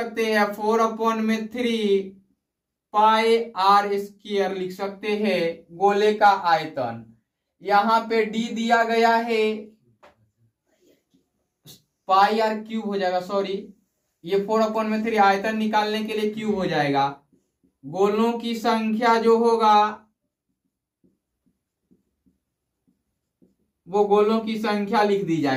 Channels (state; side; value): identical; both; correlation 1.00